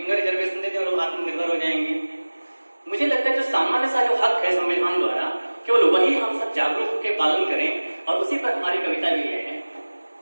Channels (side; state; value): both; inverted; correlation -1.00